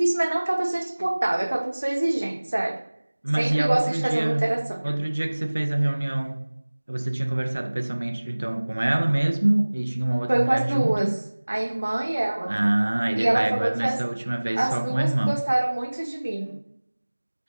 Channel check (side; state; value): both; inverted; correlation -1.00